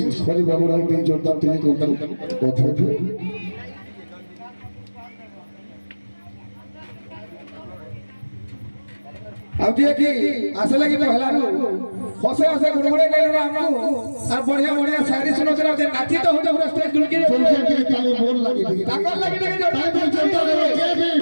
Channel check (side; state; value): both; inverted; correlation -1.00